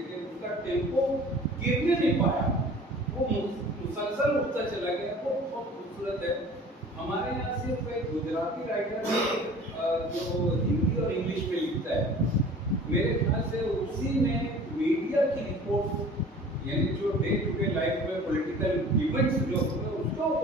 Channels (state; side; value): normal; both; correlation 0.45